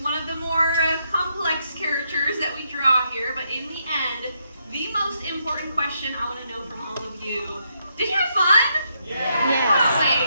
of the more complex characters that we draw here, but in the end, the most important question I want to know from all of you, did you have fun?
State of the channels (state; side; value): inverted; both; correlation -0.77